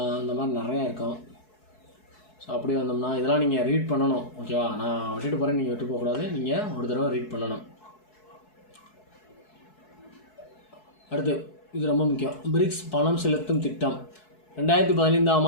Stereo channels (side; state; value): right; late; 4.7 ms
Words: இந்த மாதிரி நிறையா இருக்கும். ஸோ அப்படி வந்தோம்னா இதெல்லாம் நீங்கள் ரீட் பண்ணணும். ஓகேவா? நான் விட்டுட்டு போகிறேன், நீங்கள் விட்டு போகக்கூடாது. நீங்கள் ஒரு தடவை ரீட் பண்ணணும். அடுத்து இது ரொம்ப முக்கியம். பிரிக்ஸ் பணம் செலுத்தும் திட்டம். 2015ஆம்